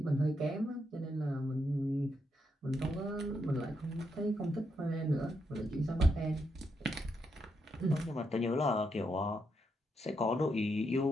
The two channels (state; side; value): normal; both; correlation 0.80